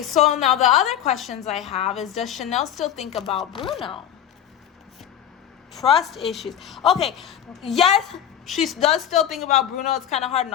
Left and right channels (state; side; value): quieter; right; 10.0 dB